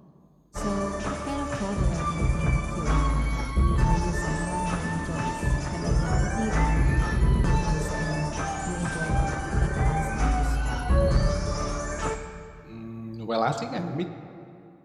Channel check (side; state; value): both; identical; correlation 1.00